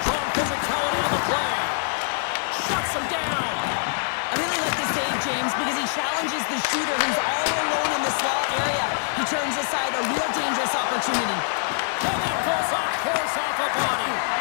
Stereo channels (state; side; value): silent; right; digital silence